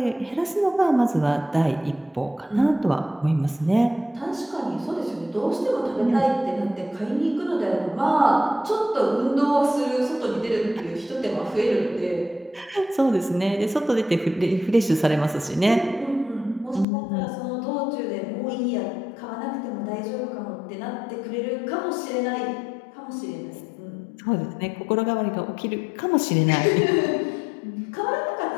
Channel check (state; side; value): drops out; right; at 16.9 s